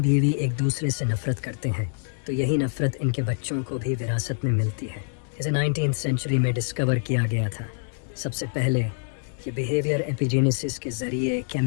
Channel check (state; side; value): silent; right; digital silence